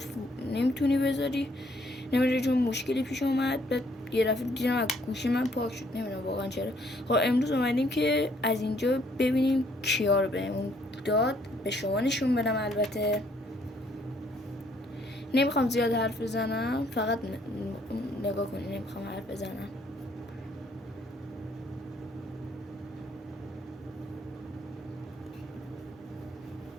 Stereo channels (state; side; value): normal; both; correlation 0.66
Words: نمیتونی بذاری، نمیدونم چون مشکلی پیش اومد. بعد یه دفعه دیدم از گوشی من پاک شد، نمیدونم واقعا چرا. خب امروز اومدیم که از اینجا ببینیم کیا رو بهمون داد، به شما نشون بدم. البته نمیخوام زیاد حرف بزنم، فقط نگاه کنی، نمیخوام حرف بزنم.